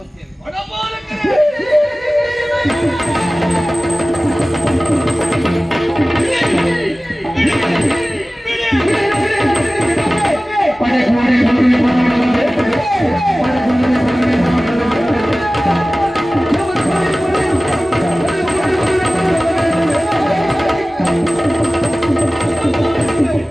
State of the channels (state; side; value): normal; both; correlation 0.97